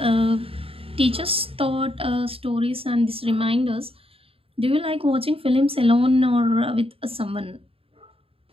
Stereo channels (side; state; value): left; late; 0.27 ms